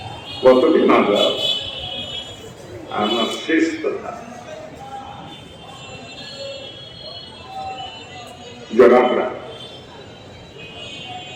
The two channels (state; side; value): identical; both; correlation 1.00